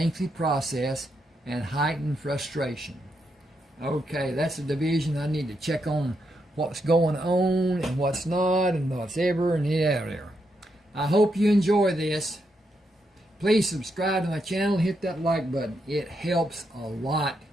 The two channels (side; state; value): both; normal; correlation 0.81